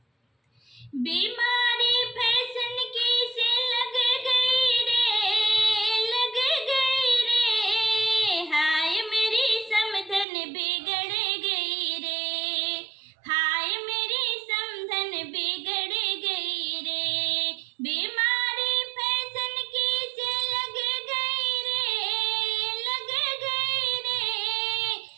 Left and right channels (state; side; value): drops out; left; at 10.2 s